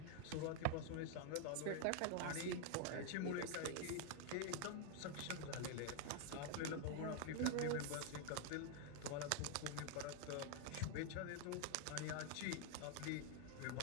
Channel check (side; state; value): both; different; correlation 0.00